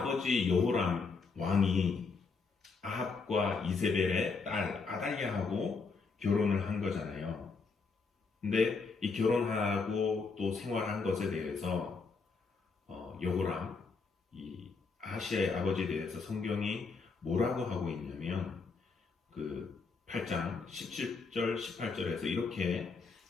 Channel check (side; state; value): right; quieter; 4.6 dB